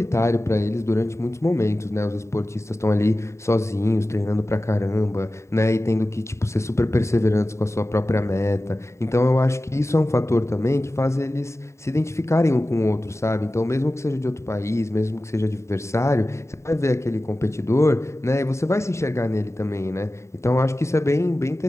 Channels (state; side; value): late; right; 0.14 ms